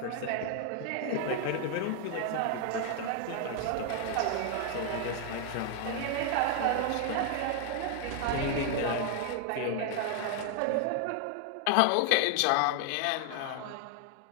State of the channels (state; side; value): different; both; correlation 0.00